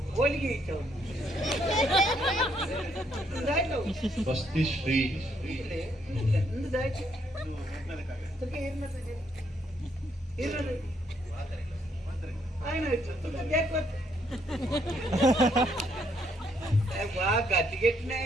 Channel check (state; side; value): normal; both; correlation 0.72